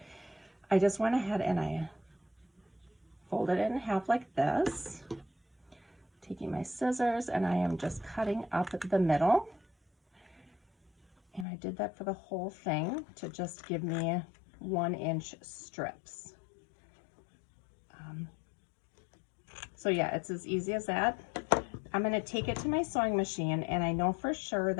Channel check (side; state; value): right; drops out; at 11.5 s